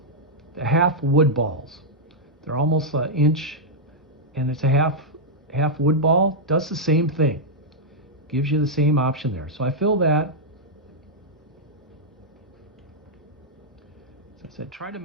the half wood balls. They're almost an inch, and it's a half wood ball. Does the same thing. Gives you the same option there. So I fill that. As I said, try to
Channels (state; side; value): normal; both; correlation -0.06